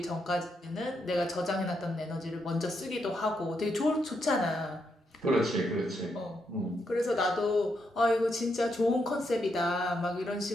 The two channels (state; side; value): normal; both; correlation 0.80